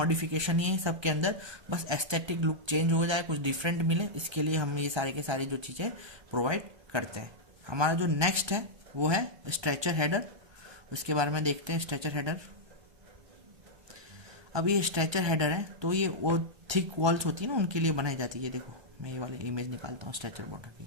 ही है सबके अंदर, बस एस्थेटिक लुक चेंज हो जाए, कुछ डिफरेंट मिले, इसके लिए हम ये सारे के सारे जो चीज़ें प्रोवाइड करते हैं। हमारा जो नेक्स्ट है वो है स्ट्रेचर हेडर। उसके बारे में देखते हैं। स्ट्रेचर हेडर, अब ये स्ट्रेचर हेडर है तो ये वो थिक वॉल्स होती है ना, उनके लिए बनाई जाती है। देखो मैं ये वाली इमेज निकालता हूँ स्ट्रेचर बॉर्डर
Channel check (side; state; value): left; late; 1.2 ms